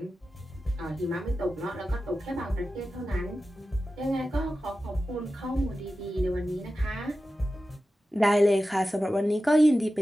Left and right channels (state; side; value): normal; both; correlation 0.93